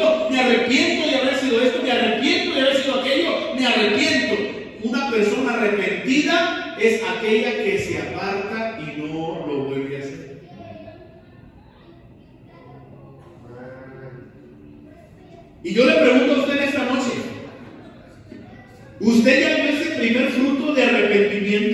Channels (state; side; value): identical; both; correlation 1.00